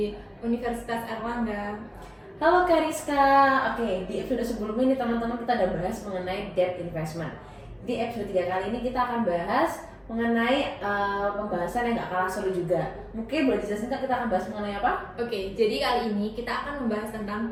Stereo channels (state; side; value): identical; both; correlation 1.00